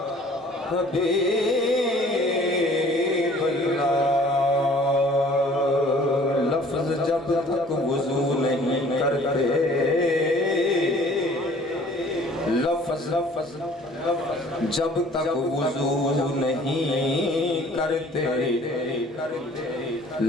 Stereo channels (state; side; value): normal; both; correlation 0.52